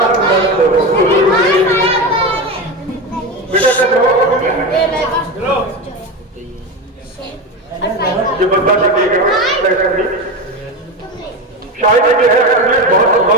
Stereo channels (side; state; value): both; normal; correlation 0.20